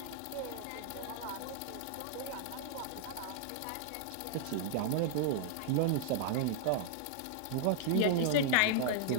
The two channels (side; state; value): both; different; correlation -0.01